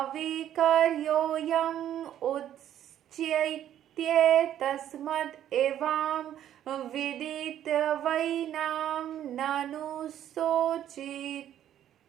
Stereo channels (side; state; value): left; quieter; 11.1 dB